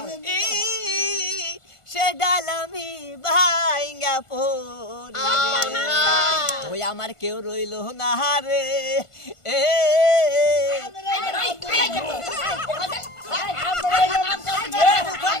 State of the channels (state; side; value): late; right; 1.5 ms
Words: সে ডালামি ভাইঙ্গা পড়ে ওই আমার কেউ রইল না রে এ